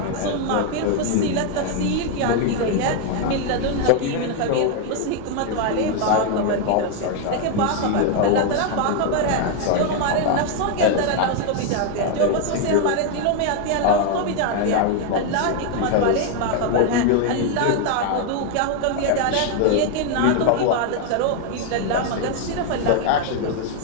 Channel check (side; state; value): both; different; correlation 0.01